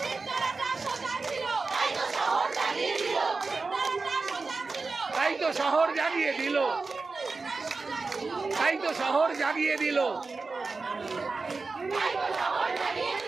তাই তো শহর জাগিয়ে দিল, তাই তো শহর জাগিয়ে দিল,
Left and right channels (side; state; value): left; quieter; 4.0 dB